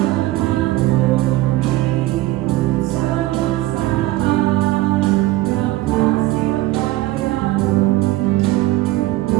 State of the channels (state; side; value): quieter; left; 17.3 dB